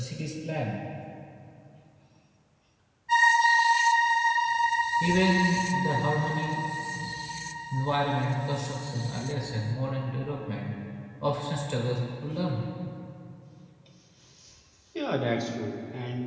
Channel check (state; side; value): identical; both; correlation 1.00